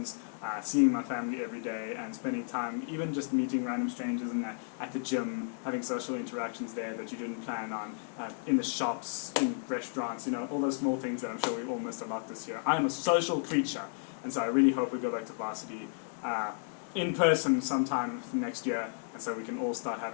seeing my family every day, and spending time even just meeting random strangers at the gym, having social interactions there that you didn't plan on, in the shops, in restaurants, all those small things that I'm sure we all missed a lot this year. I am a social creature, and so I really hope we go back to varsity in person sometime next year, and so we can all start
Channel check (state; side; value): silent; right; 56 dB below the other